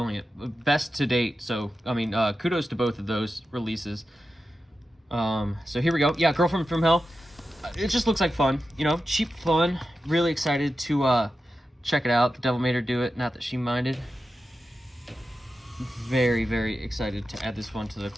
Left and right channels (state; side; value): normal; both; correlation 0.91